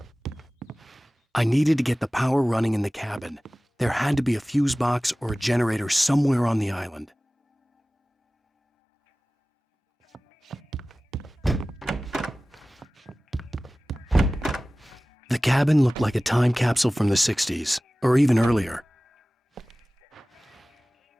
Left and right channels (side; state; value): both; normal; correlation 0.98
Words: I needed to get the power running in the cabin. There had to be a fuse box or a generator somewhere on the island. The cabin looked like a time capsule from the 60s, or even earlier.